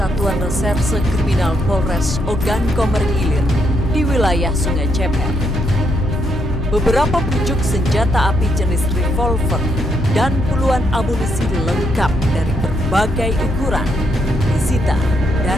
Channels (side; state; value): both; normal; correlation 0.76